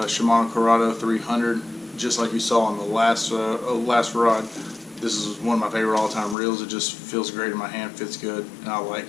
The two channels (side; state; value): right; drops out; at 6.4 s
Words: Corrado 300, just like you saw on the last rod. This is one of my favorite all-time reels. It just feels great in my hand, fits good, and I